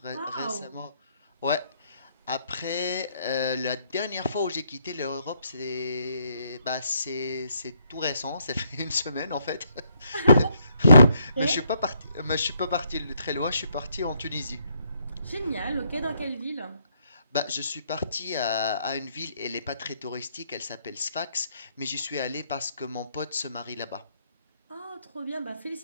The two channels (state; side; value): inverted; both; correlation -0.72